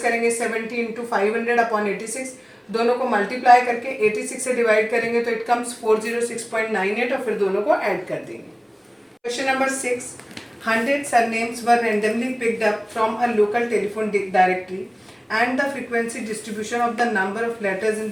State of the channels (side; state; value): both; identical; correlation 1.00